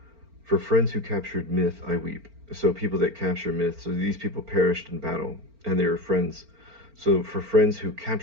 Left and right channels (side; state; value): left; late; 4.4 ms